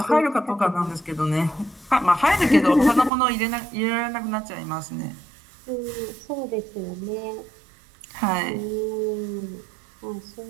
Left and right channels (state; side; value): drops out; left; at 3.1 s